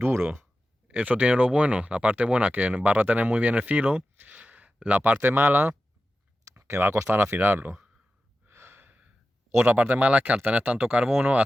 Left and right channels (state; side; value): normal; both; correlation 0.93